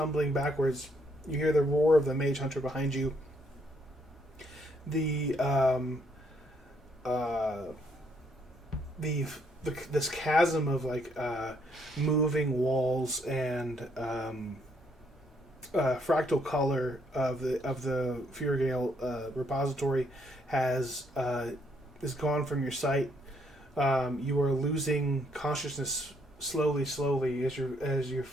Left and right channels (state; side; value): normal; both; correlation 0.71